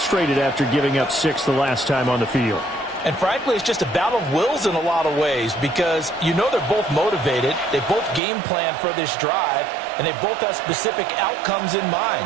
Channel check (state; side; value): drops out; left; at 8.2 s